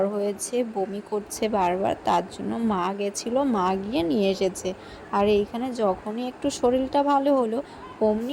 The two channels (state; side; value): identical; both; correlation 1.00